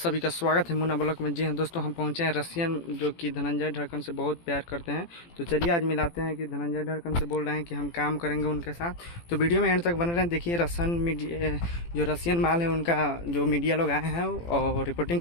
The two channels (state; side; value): late; right; 18 ms